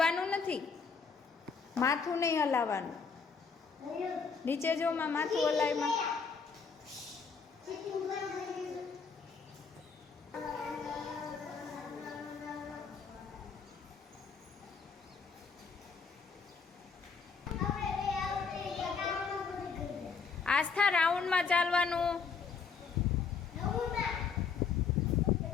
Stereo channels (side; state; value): right; quieter; 5.5 dB